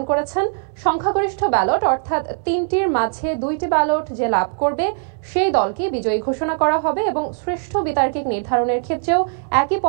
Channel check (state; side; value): silent; left; 64 dB below the other